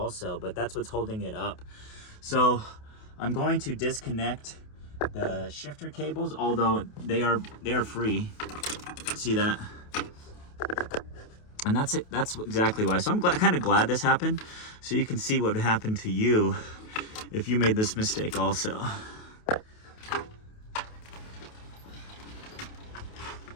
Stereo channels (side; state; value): right; late; 28 ms